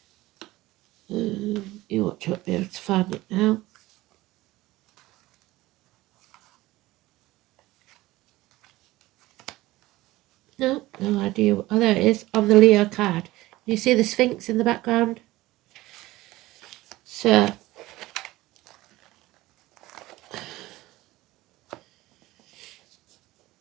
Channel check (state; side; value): quieter; left; 18.1 dB